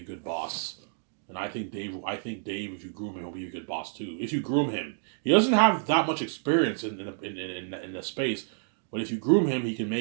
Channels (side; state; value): left; silent; digital silence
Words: good boss. And I think Dave, if you groom him, he'll be a good boss too. If you groom him. He doesn't have that much experience in the space, but if you groom him, he can